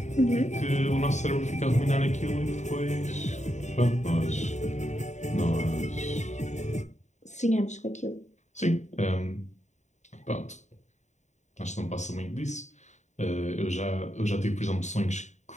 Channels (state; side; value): late; right; 0.34 ms